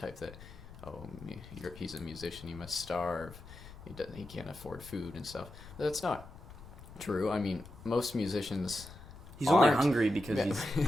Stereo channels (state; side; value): noise; left; rumble, 16 dB below the sound